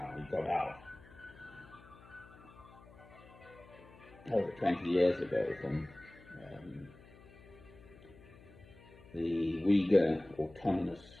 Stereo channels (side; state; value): left; noise; hum, 22 dB below the sound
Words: he got out over 20 years ago from the Uyghur Autonomous